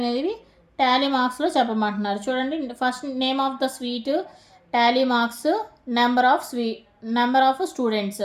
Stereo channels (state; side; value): identical; both; correlation 1.00